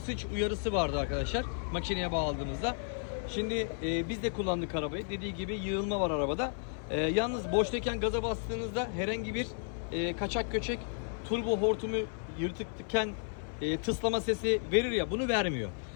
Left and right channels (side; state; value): right; silent; 56 dB below the other